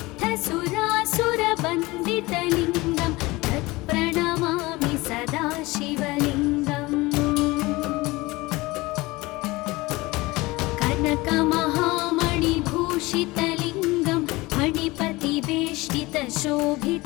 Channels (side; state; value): right; quieter; 21.5 dB